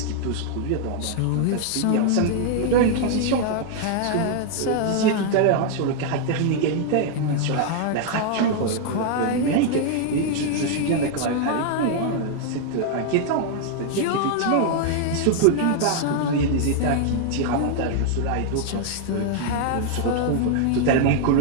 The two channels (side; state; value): both; different; correlation 0.00